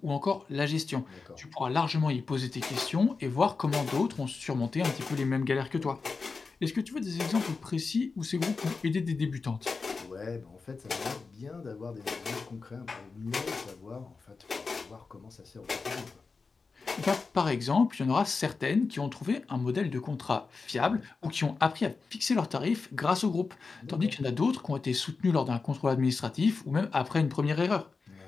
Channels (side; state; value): right; quieter; 4.5 dB